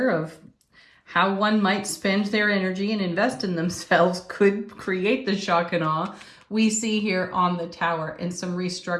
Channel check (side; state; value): both; identical; correlation 1.00